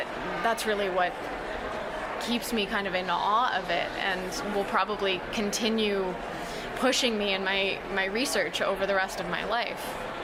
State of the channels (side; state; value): both; identical; correlation 1.00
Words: really what keeps me kind of in awe of it, and will probably continue pushing me in my research over the rest of my life.